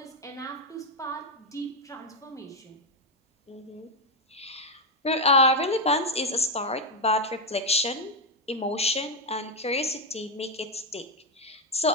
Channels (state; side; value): normal; both; correlation 0.04